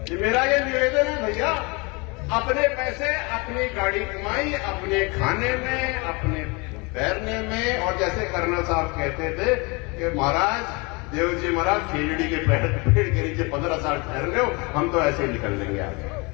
मेरा ये निवेदन है भैया, अपने पैसे अपनी गाड़ी कमाई, अपने खाने में, अपने तैरने में। और जैसे कर्नल साहब कहते थे कि महाराज देव जी महाराज खेजड़ी के पेड़ के नीचे 15 साल ठहर रहे हो, हम तो ऐसे ही निकल लेंगे आगे।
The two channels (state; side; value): quieter; right; 28.4 dB